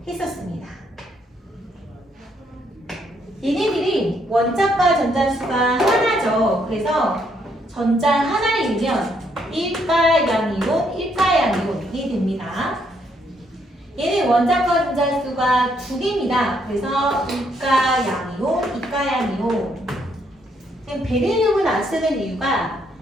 했었습니다. 얘네들이 원자과 전자수가 하나죠. 그래서 전자 하나이면 1가양이온, 1가양이온이 됩니다. 얘는 원자과 전자수가 두 개입니다. 그래서 2가양이온, 2가양이온. 베릴륨은 안 쓰는 이유가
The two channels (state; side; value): normal; both; correlation 0.72